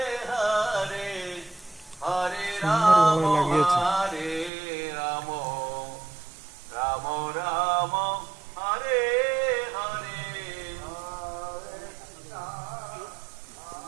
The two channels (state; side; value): drops out; left; at 4.5 s